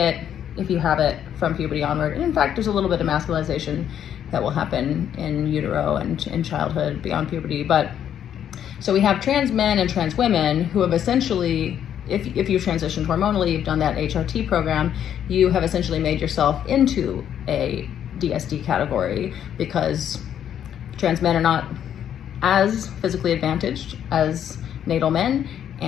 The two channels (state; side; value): quieter; right; 9.7 dB